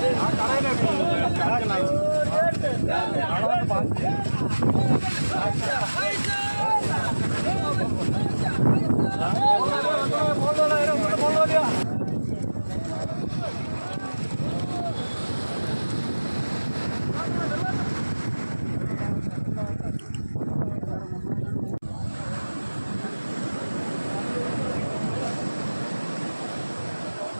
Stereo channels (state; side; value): inverted; both; correlation -1.00